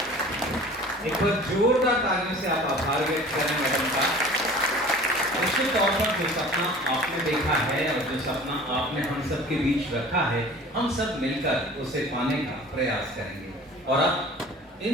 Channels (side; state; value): both; normal; correlation 0.44